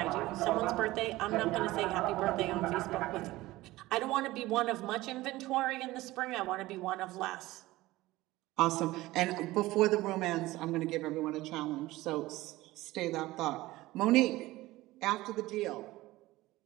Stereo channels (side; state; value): left; quieter; 18.2 dB